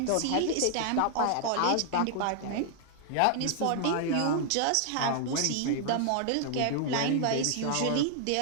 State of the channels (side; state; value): both; different; correlation 0.00